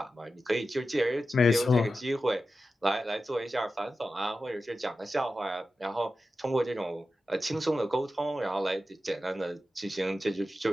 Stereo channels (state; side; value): normal; both; correlation 0.92